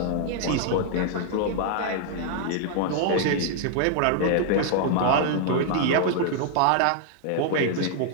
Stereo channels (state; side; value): different; both; correlation 0.00